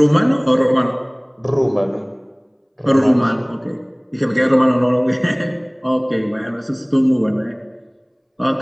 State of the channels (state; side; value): identical; both; correlation 1.00